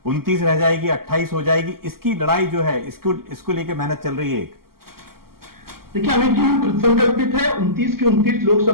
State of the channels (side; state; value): left; late; 0.93 ms